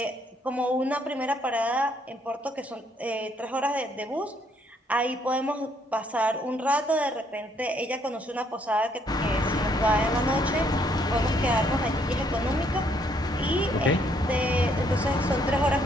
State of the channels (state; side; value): normal; both; correlation 0.69